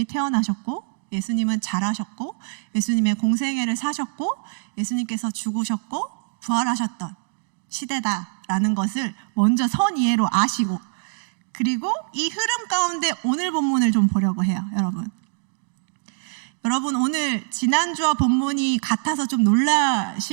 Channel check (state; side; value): silent; left; digital silence